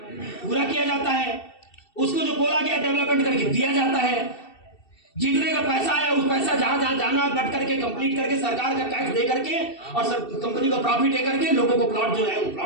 पूरा किया जाता है, उसको जो बोला गया डेवलपमेंट करके दिया जाता है, जितने का पैसा है उस पैसा जहां जहां जाना कट करके कंप्लीट करके सरकार का टैक्स दे करके और सर कंपनी को प्रॉफिट दे करके लोगों को प्लॉट जो है वो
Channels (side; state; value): right; late; 2.7 ms